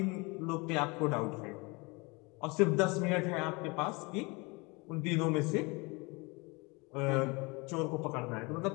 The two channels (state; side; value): quieter; right; 27.2 dB